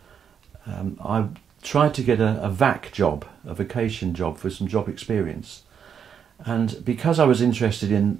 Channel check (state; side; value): quieter; left; 7.7 dB